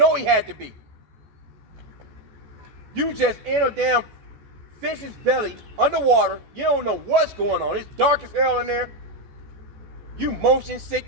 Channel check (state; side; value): late; left; 14 ms